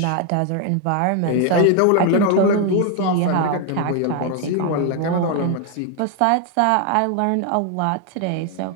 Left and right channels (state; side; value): different; both; correlation 0.01